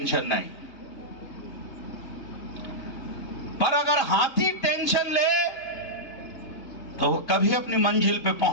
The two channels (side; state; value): right; late; 2.9 ms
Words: नहीं। पर अगर हाथी टेंशन ले तो वो कभी अपनी मंजिल पे